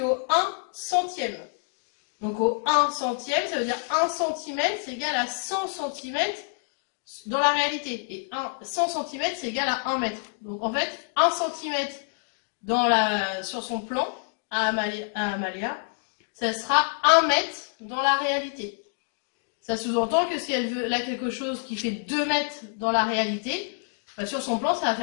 au 1 centième. Donc au 1 centième, ça veut dire 1 cm, c'est égal à 100 cm dans la réalité. Et 100 cm, c'est égal à 1 mètre. Donc en fait, 1 cm sur son plan à Amalia, ça sera 1 mètre dans la réalité. Ça sous-entend que si elle veut là quelque chose qui fait 2 mètres dans la réalité, bah sur son plan, ça va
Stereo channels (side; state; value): right; silent; 60 dB below the other